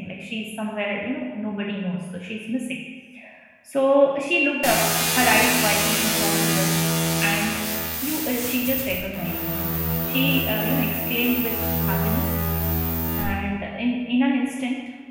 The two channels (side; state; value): both; identical; correlation 1.00